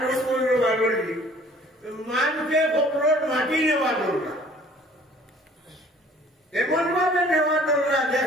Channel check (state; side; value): normal; both; correlation 0.54